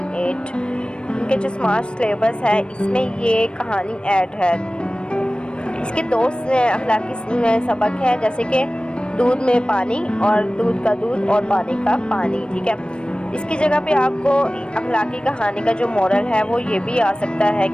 8 इनके जो स्मार्ट सिलेबस है इसमें ये कहानी ऐड है। इसके दो अखलाकी सबक है, जैसे कि दूध में पानी और दूध का दूध और पानी का पानी। ठीक है, इसकी जगह पे आपको अखलाकी कहानी का जो मोरल है वो ये भी आ सकता है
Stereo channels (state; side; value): late; right; 0.055 ms